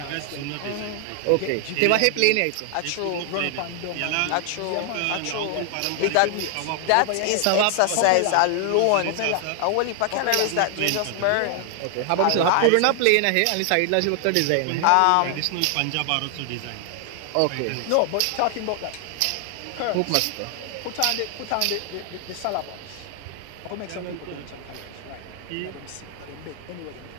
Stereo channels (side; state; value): both; different; correlation 0.00